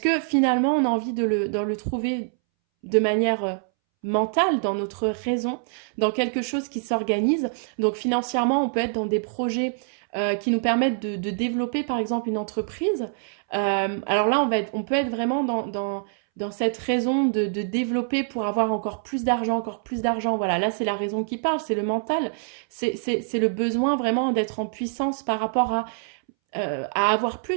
que finalement on a envie de le trouver de manière mentale, dans notre raison, dans quelque chose qui s'organise. Donc financièrement, on peut être dans des projets qui nous permettent de développer par exemple une entreprise. Alors là, on peut être vraiment dans cette raison de développer pour avoir encore plus d'argent, encore plus d'argent. Voilà, là c'est la raison qui parle, c'est le mental, c'est le besoin vraiment d'être en puissance par rapport à avoir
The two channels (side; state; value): left; silent; 62 dB below the other